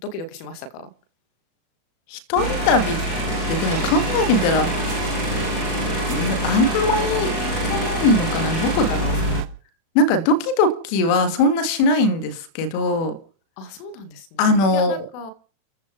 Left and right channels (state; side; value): late; right; 36 ms